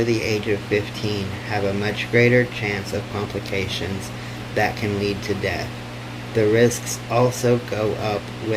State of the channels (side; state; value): both; identical; correlation 1.00